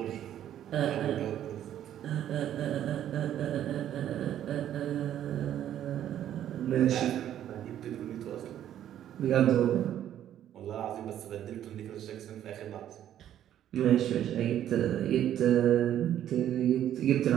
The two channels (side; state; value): left; quieter; 11.1 dB